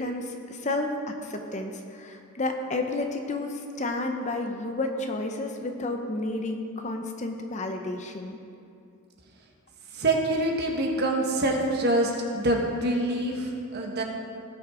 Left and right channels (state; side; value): normal; both; correlation 0.20